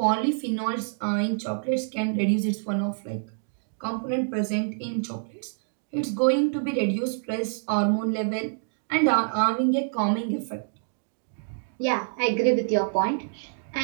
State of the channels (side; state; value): left; silent; digital silence